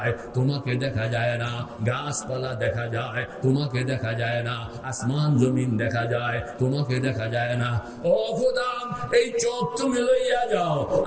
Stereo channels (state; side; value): identical; both; correlation 1.00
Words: তোমাকে দেখা যায় না, গাছপালা দেখা যায় তোমাকে দেখা যায় না, আসমান জমিন দেখা যায় তোমাকে দেখা যায় না। ও খোদা, এই চোখ তুমি লইয়া যাও,